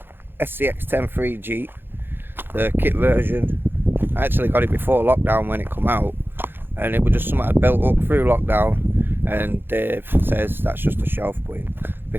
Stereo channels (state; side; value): late; left; 0.10 ms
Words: SCX10.3 Jeep, the kit version. I actually got it before lockdown when it come out, and it was just something I'd built up through lockdown, and Dave says that's just a shelf queen,